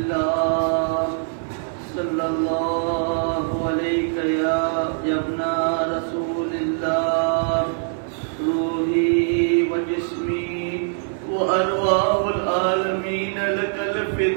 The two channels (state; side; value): silent; left; digital silence